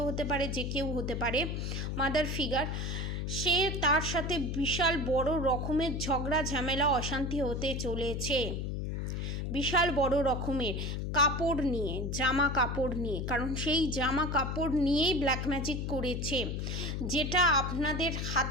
হতে পারে, যে কেউ হতে পারে, মাদার ফিগার, সে তার সাথে বিশাল বড় রকমের ঝগড়া ঝামেলা অশান্তি হতে চলেছে, বিশাল বড় রকমের কাপড় নিয়ে, জামা কাপড় নিয়ে, কারণ সেই জামা কাপড় নিয়েই ব্ল্যাক ম্যাজিক করেছে, যেটা আপনাদের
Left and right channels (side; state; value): left; noise; hum, 2 dB below the sound